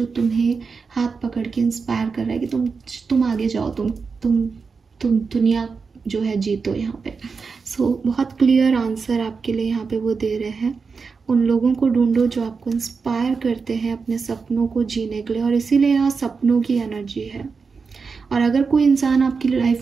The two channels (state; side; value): quieter; left; 5.0 dB